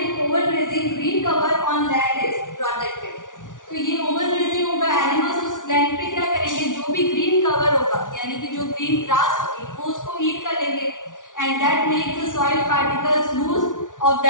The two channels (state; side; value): late; right; 0.88 ms